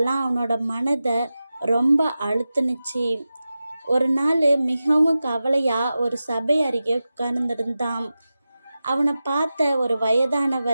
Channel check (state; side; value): inverted; both; correlation -0.94